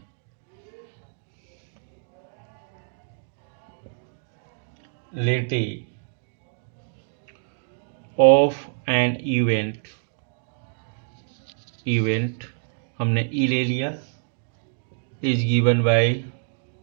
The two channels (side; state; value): left; silent; digital silence